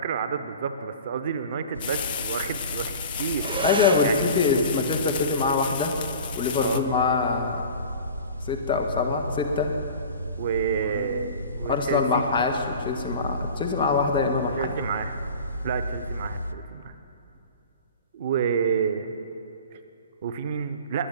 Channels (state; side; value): inverted; both; correlation -0.39